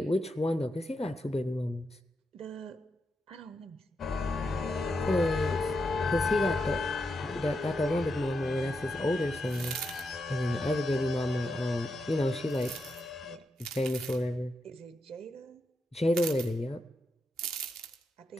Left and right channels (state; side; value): normal; both; correlation 0.85